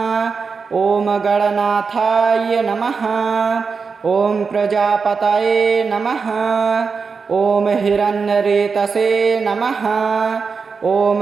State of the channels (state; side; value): quieter; left; 5.2 dB